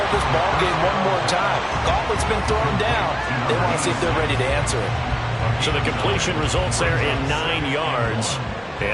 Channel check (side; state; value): both; identical; correlation 1.00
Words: this ball game one more time. Gauntlet's been thrown down. They want to see if they're ready to answer it. So the completion results there in 9 yards.